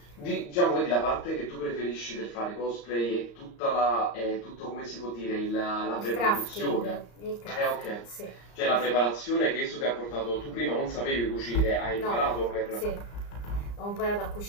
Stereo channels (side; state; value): right; late; 34 ms